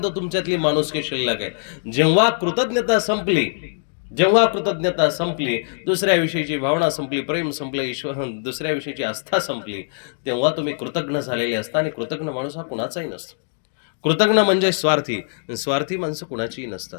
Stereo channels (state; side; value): silent; right; digital silence